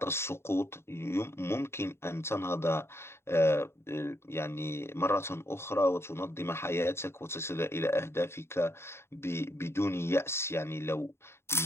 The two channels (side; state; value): right; late; 0.12 ms